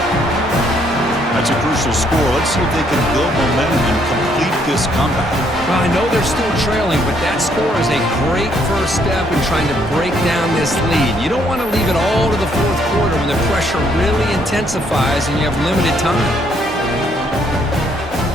That's a crucial score. Let's see if they can build momentum and complete this comeback. Well, I know they're still trailing, but that score is a great first step in trying to break down this lead. You don't want to leave it all to the fourth quarter when the pressure really intensifies and you have limited time.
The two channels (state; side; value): normal; both; correlation 0.69